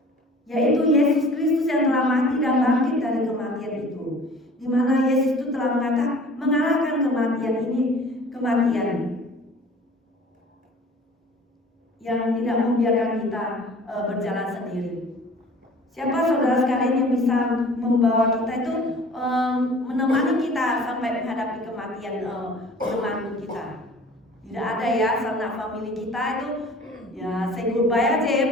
Yaitu Yesus Kristus yang telah mati dan bangkit dari kematian itu, di mana Yesus itu telah mengalahkan kematian yang tidak membiarkan kita berjalan sendiri. Siapa saudara sekalian yang bisa membawa kita itu menemani kita sampai menghadapi kematian teman kita? Tidak ada ya, sanak family kita itu ya say goodbye aja ya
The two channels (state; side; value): normal; both; correlation 0.47